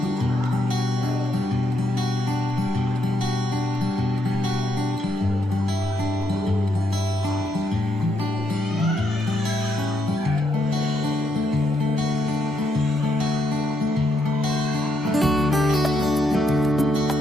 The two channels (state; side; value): normal; both; correlation 0.78